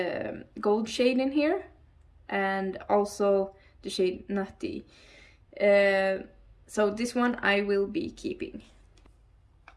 gold shade in here, and also the shade Nutty. So this one I will be keeping.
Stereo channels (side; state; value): both; identical; correlation 1.00